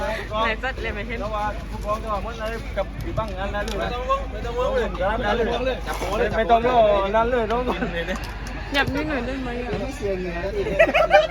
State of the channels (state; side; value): identical; both; correlation 1.00